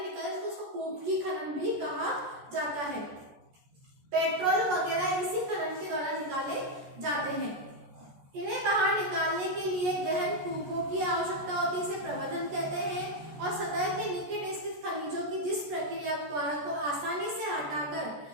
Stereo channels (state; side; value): late; left; 14 ms